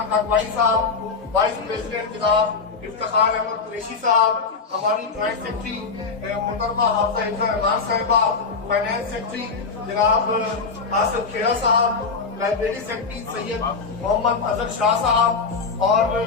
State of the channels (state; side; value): quieter; right; 4.8 dB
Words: काकवानी साहब, वाइस प्रेसिडेंट जनाब इफ्तिखार अहमद कुरैशी साहब, हमारी ज्वाइंट सेक्रेटरी मोहतरमा हाफिजा हिफ्जा रहमान साहिबा, फाइनेंस सेक्रेटरी जनाब आसिफ खेड़ा साहब, लाइब्रेरी सेक्रेटरी सैयद मोहम्मद अजहर शाह साहब और